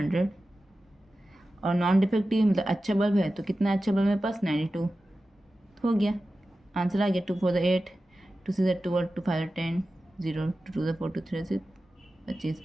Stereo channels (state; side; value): normal; both; correlation 0.94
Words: और नॉन डिफेक्टिव मतलब अच्छा बल्ब है, तो कितना अच्छा बल्ब मेरे पास 92 हो गया, आंसर आ गया। 2 4 8, 2 6 12, 2 5 10, 0 2 4 2 3 6 25,